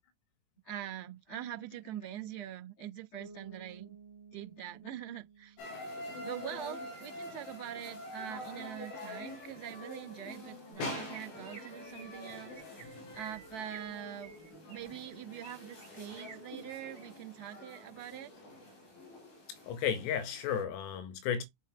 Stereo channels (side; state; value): right; late; 18 ms